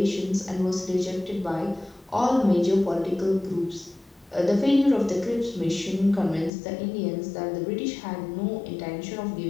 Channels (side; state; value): right; drops out; at 6.5 s